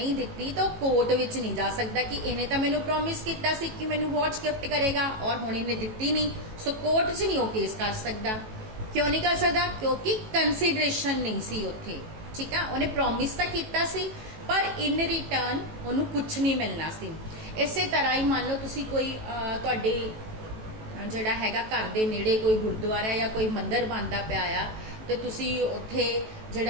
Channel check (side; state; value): left; late; 18 ms